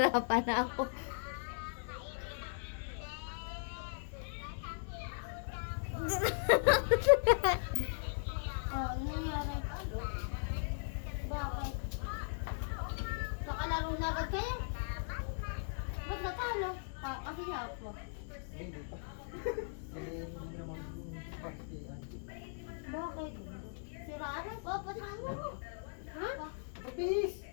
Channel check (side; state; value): right; silent; digital silence